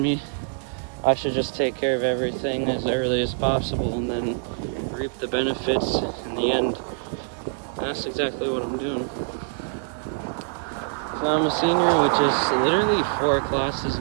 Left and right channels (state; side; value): silent; left; 56 dB below the other